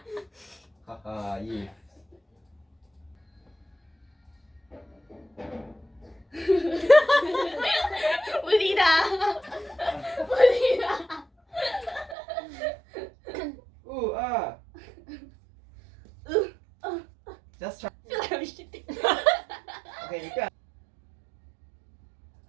哈哈 if. 不理他。Just try. Feel like I'm shitting. Okay, 你不要。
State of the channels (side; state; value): left; drops out; at 12.2 s